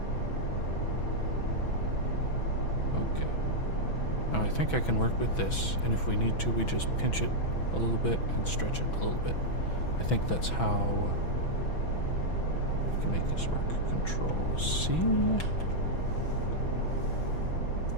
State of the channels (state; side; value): late; right; 6.1 ms